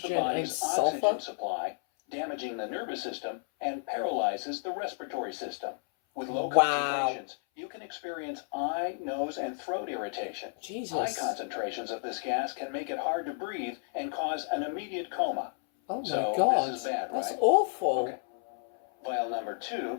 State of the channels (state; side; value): silent; right; 57 dB below the other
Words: Hydrogen and body's sulfur? oxygen supply, damaging the nervous system, and paralyzes the respiratory system. With low Wow. concentrations, you can experience eye, nose, and throat irritation. High Jesus. concentrations of this gas can make it hard to breathe and cause an immediate coma. Oh my So, god. this is bad, That's right? awful. Okay. Vial number 2